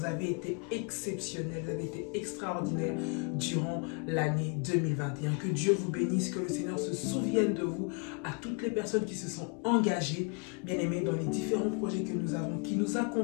avez été exceptionnels, vous avez été extraordinaires durant l'année 2021. Que Dieu vous bénisse, que le Seigneur se souvienne de vous, à toutes les personnes qui se sont engagées, bien-aimés, dans les différents projets que nous avons, qui nous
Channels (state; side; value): quieter; right; 35.8 dB